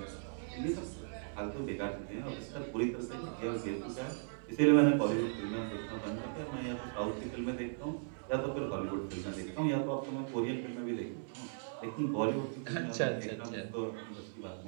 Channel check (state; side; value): silent; left; 53 dB below the other